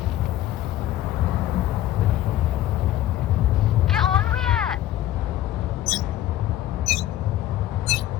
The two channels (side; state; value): right; quieter; 13.2 dB